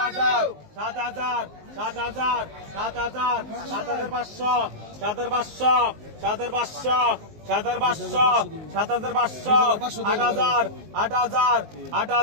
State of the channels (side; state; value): left; late; 19 ms